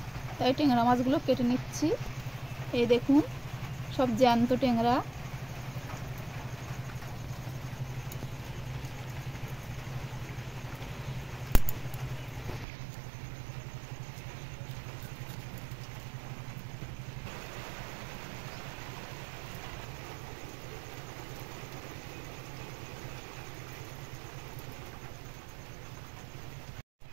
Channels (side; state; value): left; drops out; at 12.7 s